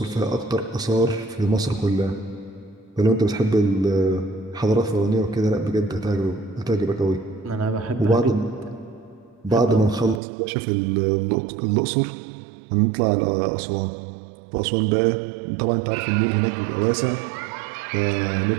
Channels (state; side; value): drops out; left; at 10.2 s